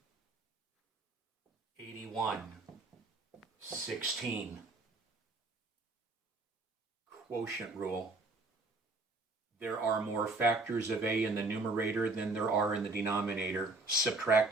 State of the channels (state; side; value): quieter; left; 3.2 dB